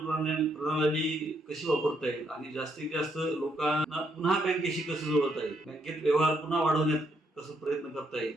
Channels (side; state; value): both; normal; correlation 0.74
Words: प्रणाली कशी वापरता येईल आणि जास्तीत जास्त लोकांना पुन्हा बँकेशी कसं जोडता येईल, बँकेत व्यवहार पुन्हा वाढवण्यात कसं प्रयत्न करता